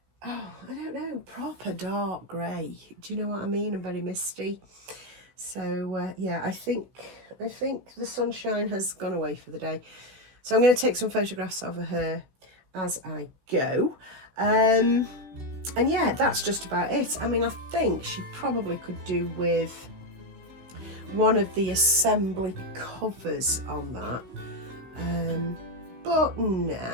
oh, I don't know, proper dark grey. Do you know what I mean? And very misty. So yeah, I think the sunshine has gone away for the day. So I'm going to take some photographs of her as I go. And yeah, that's just about it. I mean, I think she probably could do with one of the assembly covers on that. But no,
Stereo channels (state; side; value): late; left; 16 ms